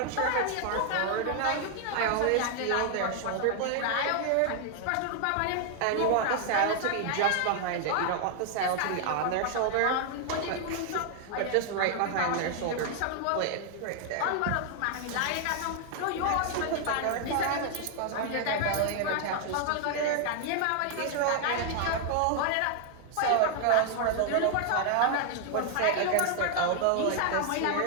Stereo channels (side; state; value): both; different; correlation 0.00